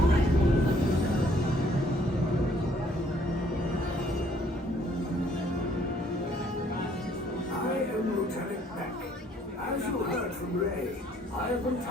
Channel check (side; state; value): both; normal; correlation 0.63